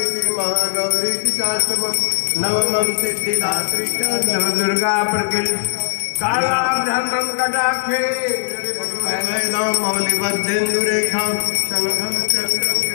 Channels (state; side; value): silent; right; digital silence